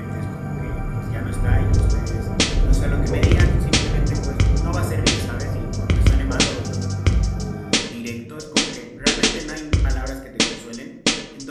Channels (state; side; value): identical; both; correlation 1.00